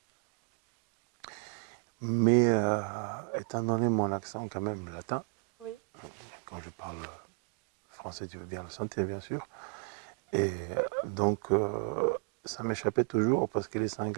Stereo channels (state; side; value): quieter; left; 35.1 dB